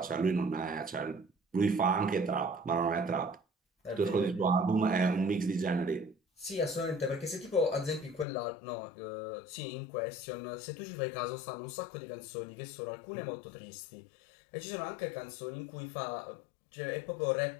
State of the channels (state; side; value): drops out; right; at 8.2 s